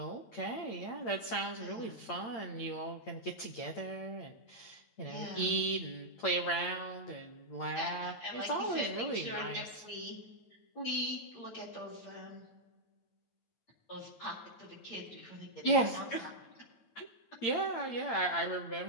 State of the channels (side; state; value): right; late; 8.8 ms